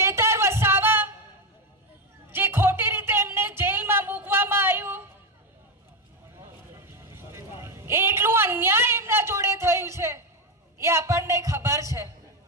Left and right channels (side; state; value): both; normal; correlation 0.10